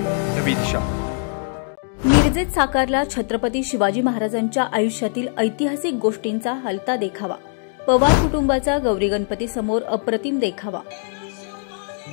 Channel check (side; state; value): right; silent; 65 dB below the other